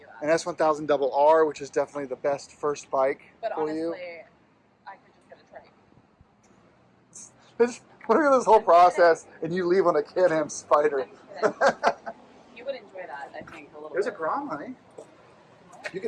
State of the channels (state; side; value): identical; both; correlation 1.00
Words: app. An S1000 Double R, which is definitely the best first bike But for honestly, you. I could just get a trike. Look at this whole process, and you leave on a Can-Am Spider. I'm kidding. You would enjoy that, I think, a little There's a bit. Grom, honey. You